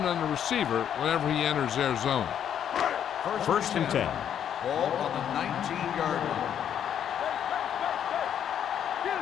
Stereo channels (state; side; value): quieter; right; 9.3 dB